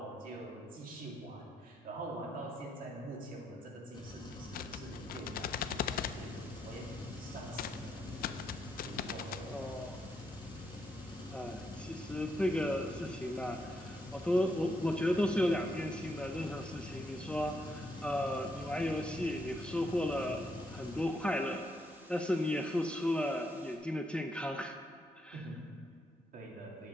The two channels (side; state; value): both; normal; correlation 0.78